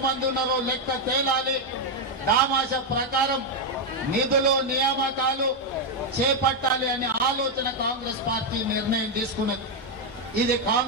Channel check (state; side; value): normal; both; correlation 0.02